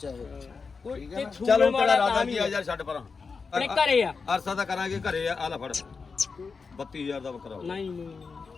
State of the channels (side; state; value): right; quieter; 4.9 dB